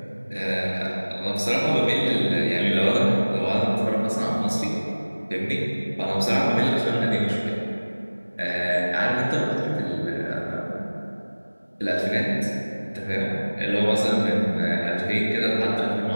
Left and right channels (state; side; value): inverted; both; correlation -1.00